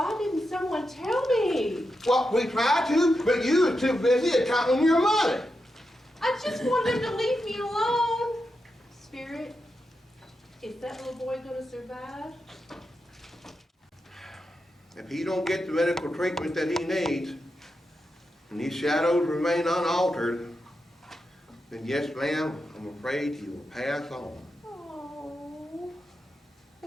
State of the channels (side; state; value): both; normal; correlation 0.87